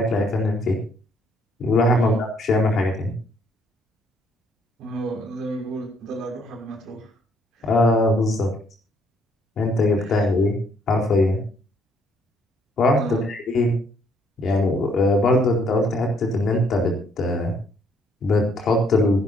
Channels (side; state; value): both; normal; correlation 0.67